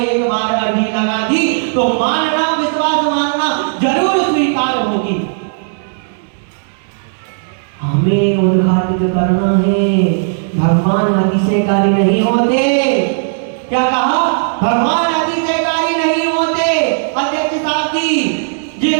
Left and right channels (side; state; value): left; silent; digital silence